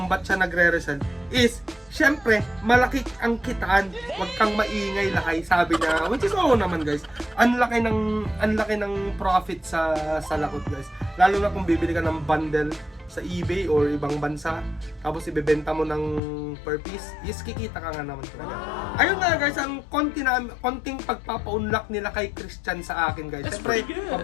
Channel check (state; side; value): drops out; right; at 16.2 s